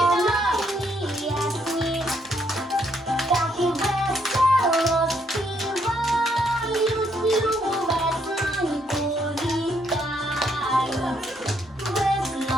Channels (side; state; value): both; normal; correlation 0.72